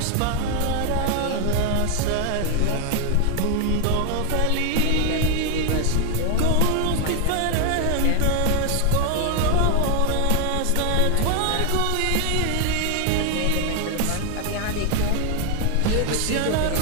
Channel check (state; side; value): different; both; correlation 0.00